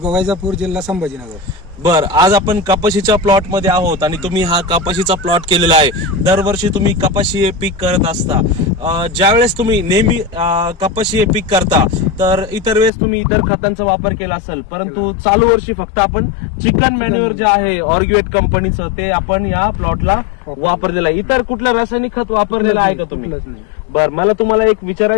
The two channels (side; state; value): right; drops out; at 12.9 s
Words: वैजापूर, जिल्हा संभाजीनगर. बर, आज आपण कपाशीच्या प्लॉट मध्ये आहोत आणि तुम्ही हा कपाशीचा प्लॉट केलेला आहे. दरवर्षी तुम्ही कपाशी हे पीक करत असता. ज्यावेळेस तुम्ही नेहमी कपाशी हे पीक करता तर इतर वेळेस तुम्ही इतर खतांचा वापर केला असेल, परंतु चालू वर्षी फक्त आपण चिकन मॅन्युअर जे आहे ऑर्गॅनिक कंपनीचं ते आपण या प्लॉटला वापरलेलं आहे. इतर कुठलं रासायनिक खत वापरलेलं आहे का तुम्ही? बर, मला तुम्हाला एक